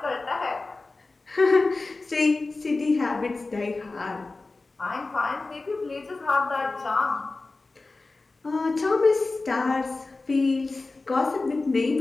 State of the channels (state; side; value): quieter; right; 3.5 dB